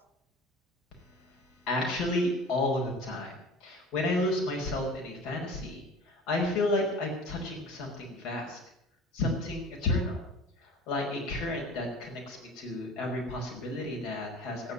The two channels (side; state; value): both; normal; correlation 0.41